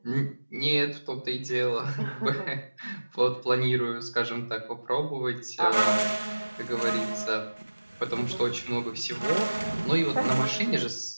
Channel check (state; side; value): inverted; both; correlation -1.00